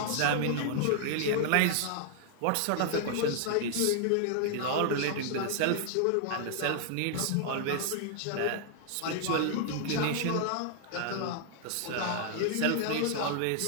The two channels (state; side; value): different; both; correlation 0.00